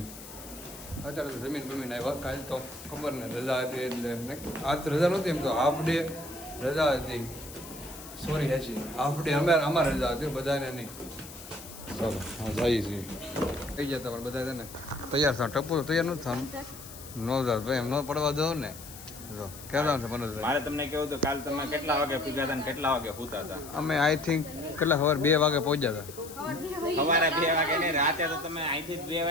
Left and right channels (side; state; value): left; noise; hiss, 15 dB below the sound